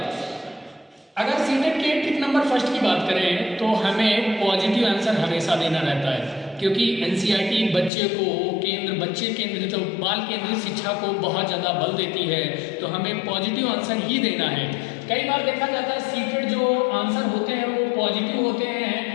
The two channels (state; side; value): drops out; right; at 7.9 s